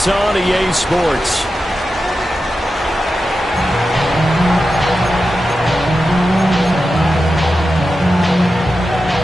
on EA Sports.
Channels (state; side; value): normal; both; correlation 0.91